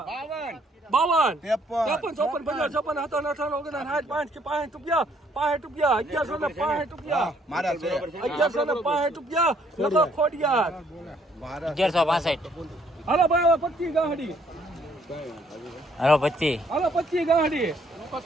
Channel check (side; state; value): both; normal; correlation 0.66